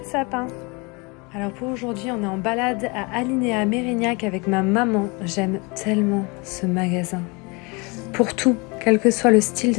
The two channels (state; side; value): quieter; right; 28.7 dB